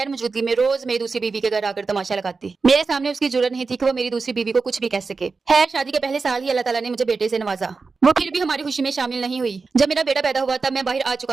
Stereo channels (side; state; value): left; quieter; 4.4 dB